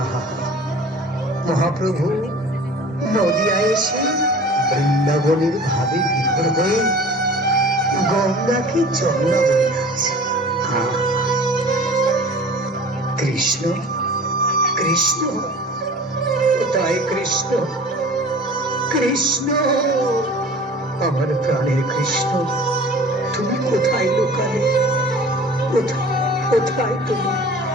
মহাপ্রভু নদিয়ায় এসে বৃন্দাবনের ভাবে বিভোর হয়ে গঙ্গাকে যমুনা বলে যাচ্ছে। কৃষ্ণ কৃষ্ণ কোথায় কৃষ্ণ? কৃষ্ণ আমার প্রাণের কৃষ্ণ, তুমি কোথায় লুকালে? কোথায় কোথায় তুমি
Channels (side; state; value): both; normal; correlation 0.43